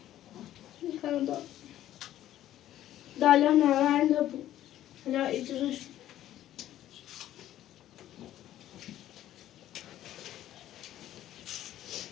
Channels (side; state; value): right; quieter; 12.8 dB